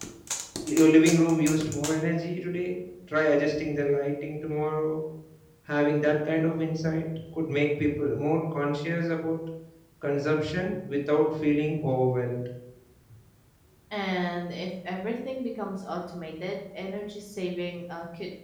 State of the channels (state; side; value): identical; both; correlation 1.00